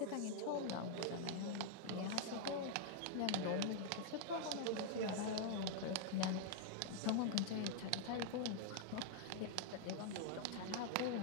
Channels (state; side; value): different; both; correlation -0.01